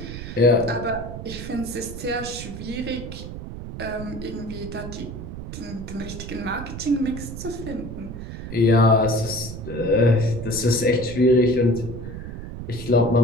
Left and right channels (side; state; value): right; noise; rumble, 9 dB below the sound